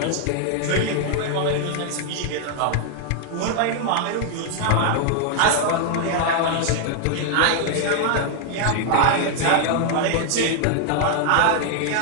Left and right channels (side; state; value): both; different; correlation 0.00